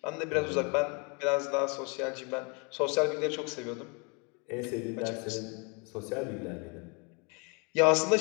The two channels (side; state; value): right; quieter; 32.9 dB